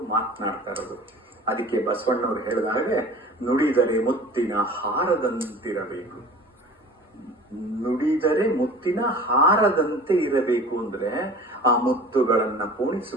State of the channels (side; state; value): both; normal; correlation 0.42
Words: ಮಾತನಾಡ್ತಾ ಇರೋದು. ಅದಕ್ಕೆ ಬಸವಣ್ಣವ್ರು ಹೇಳಿದ ಹಾಗೆ ನುಡಿದರೆ ಮುತ್ತಿನ ಹಾರದಂತಿರಬೇಕು. ನುಡಿದರೆ ಮುತ್ತಿನ ಹಾರದಂತೆ ಇರಬೇಕು ಅಂದ್ರೆ ಆ ಮುತ್ತುಗಳನ್ನ